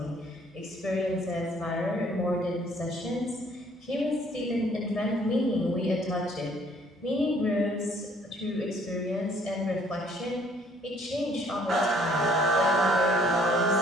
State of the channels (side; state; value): both; normal; correlation 0.60